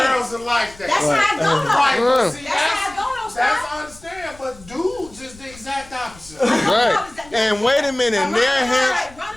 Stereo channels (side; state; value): left; noise; rumble, 22 dB below the sound